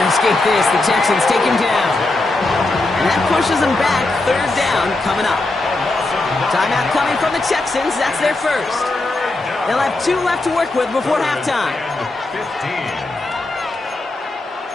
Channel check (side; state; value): right; quieter; 3.0 dB